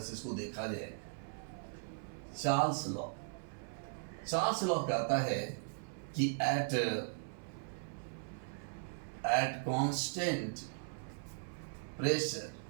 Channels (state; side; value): silent; left; 52 dB below the other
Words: इसको देखा जाए। चार्ल्स लॉ कहता है कि एट कांस्टेंट प्रेशर,